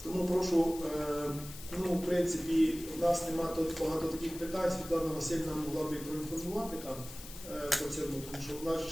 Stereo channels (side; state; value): left; noise; hiss, 14 dB below the sound